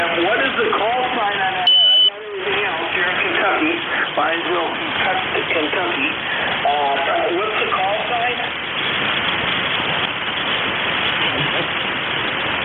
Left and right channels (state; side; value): identical; both; correlation 1.00